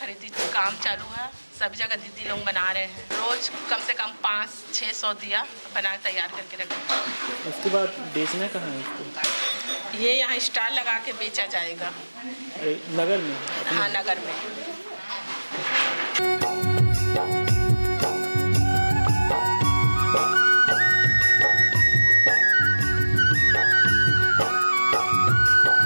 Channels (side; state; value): both; inverted; correlation -1.00